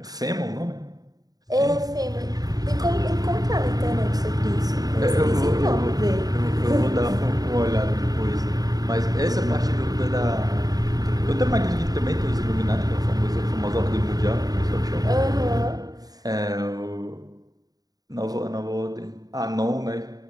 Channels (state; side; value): late; left; 0.18 ms